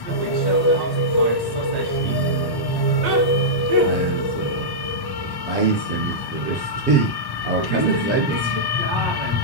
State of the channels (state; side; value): late; right; 1.1 ms